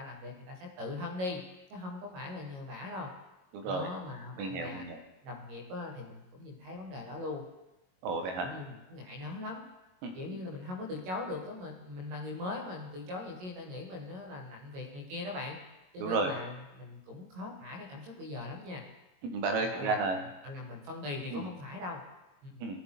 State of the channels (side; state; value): left; late; 22 ms